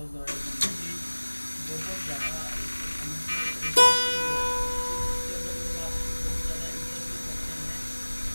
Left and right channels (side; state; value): both; inverted; correlation -1.00